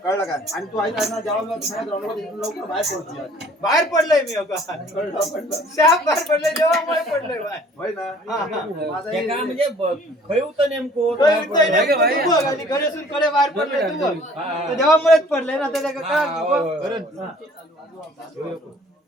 कळलं काय आणि तू ऐका ना जेव्हा लवकर बाहेर पडतो बाहेर पडलोय मी अगं शाप बाहेर पडलोय देवामुळे पडलोय बाहेर होय ना माझा ते काय म्हणजे खय होतं नेमकं तू बघ आणि घरेसून कडे बाहेर पडले तू बघ तर देवामुळेच पडले ना त्याला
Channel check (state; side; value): normal; both; correlation 0.54